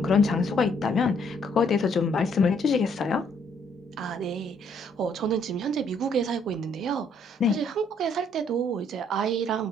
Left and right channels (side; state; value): both; normal; correlation 0.67